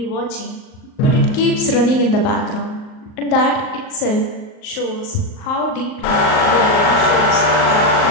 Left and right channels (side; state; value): right; late; 38 ms